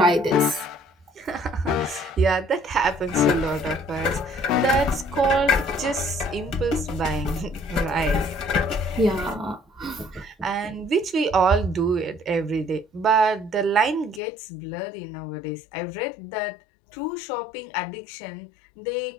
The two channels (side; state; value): right; drops out; at 14.2 s